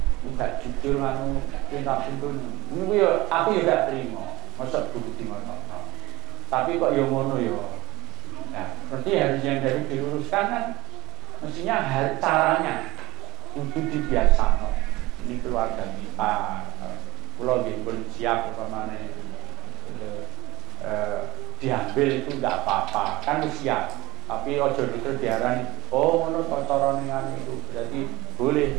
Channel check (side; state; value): left; quieter; 20.3 dB